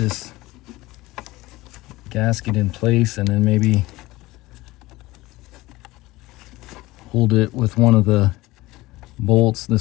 gasket in place and then maybe hold it with one of the bolts,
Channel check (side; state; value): right; quieter; 19.4 dB